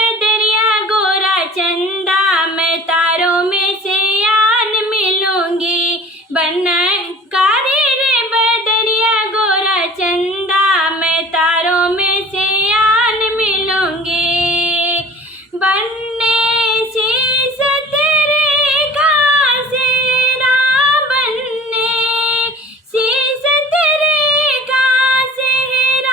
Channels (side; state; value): both; normal; correlation 0.44